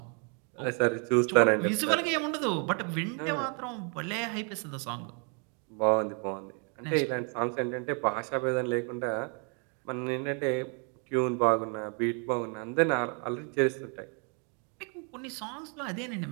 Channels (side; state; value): left; quieter; 38.4 dB